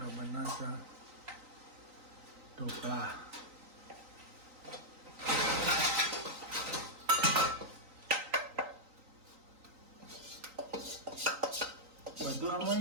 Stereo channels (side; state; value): left; late; 3.9 ms